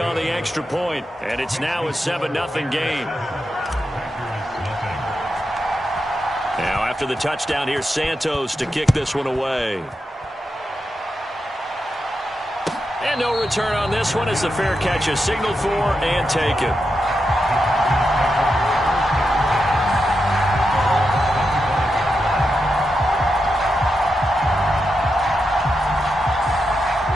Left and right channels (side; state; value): both; normal; correlation 0.87